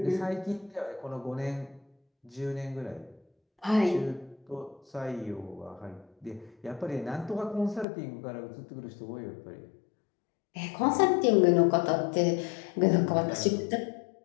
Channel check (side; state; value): right; drops out; at 7.9 s